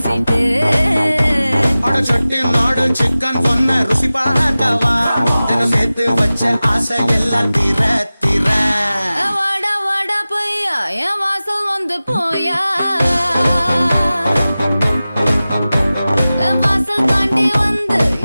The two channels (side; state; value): both; inverted; correlation -0.96